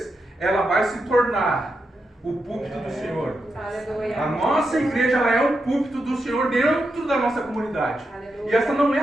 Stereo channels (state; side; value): normal; both; correlation 0.86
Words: ela vai se tornar o púlpito do Senhor. A nossa igreja, ela é o púlpito do Senhor dentro da nossa comunidade. E essa não é